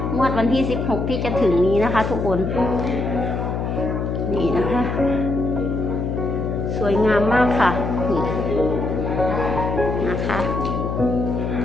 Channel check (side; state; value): left; noise; hum, 2 dB below the sound